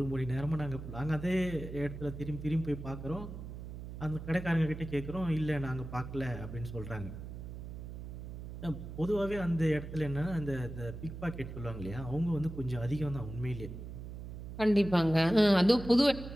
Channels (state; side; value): noise; right; hum, 10 dB below the sound